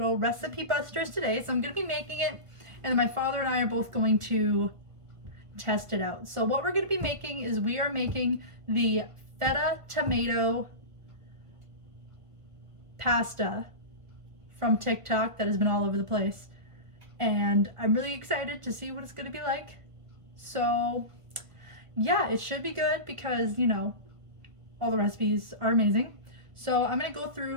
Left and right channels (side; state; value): left; late; 1.5 ms